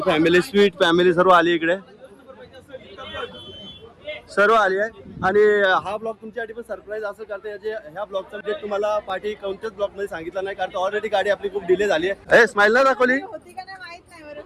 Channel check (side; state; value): both; identical; correlation 1.00